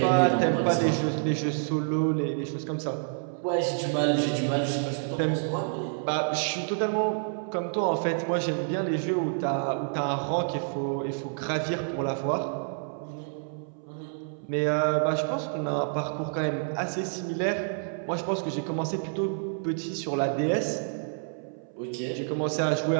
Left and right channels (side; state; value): left; silent; 59 dB below the other